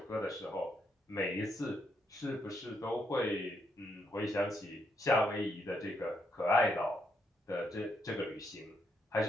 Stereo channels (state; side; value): normal; both; correlation 0.77